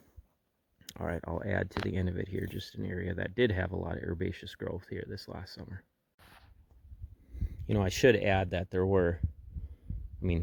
All right, I'll add to the end of it here just an area that did have a lot of herbaceous growth here this last summer. I should add that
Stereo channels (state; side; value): identical; both; correlation 1.00